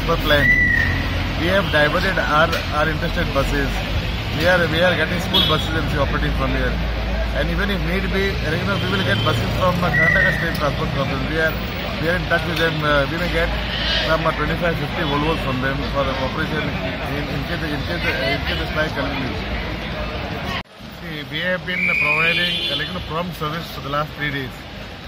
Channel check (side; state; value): both; identical; correlation 1.00